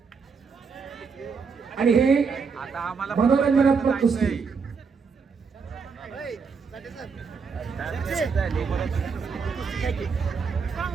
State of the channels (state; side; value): quieter; left; 5.4 dB